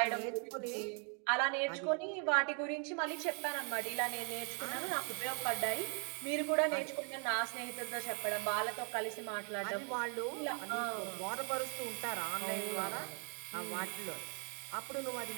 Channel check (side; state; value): left; quieter; 39.6 dB